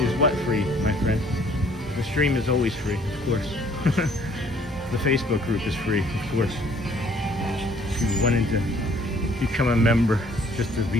what free, my friend? The stream is always free, of course. The Facebook group is free, of course. If you wanted to become a member just to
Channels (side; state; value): both; normal; correlation 0.59